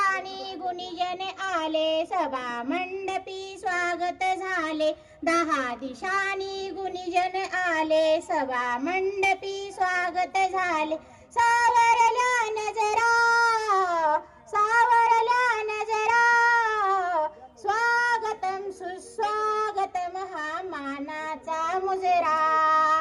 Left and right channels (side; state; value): both; identical; correlation 1.00